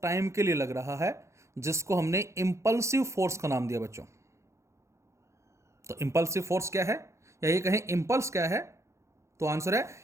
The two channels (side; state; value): left; late; 0.14 ms